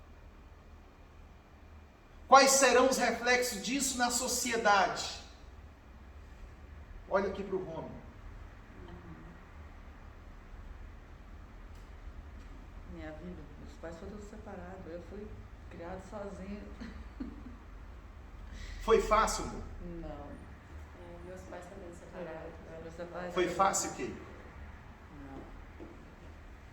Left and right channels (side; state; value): both; identical; correlation 1.00